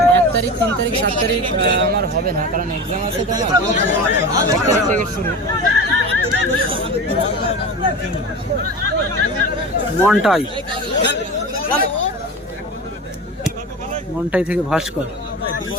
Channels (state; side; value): normal; both; correlation 0.29